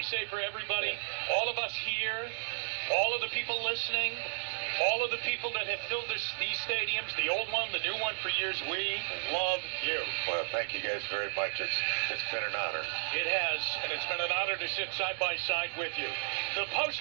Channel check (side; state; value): left; silent; digital silence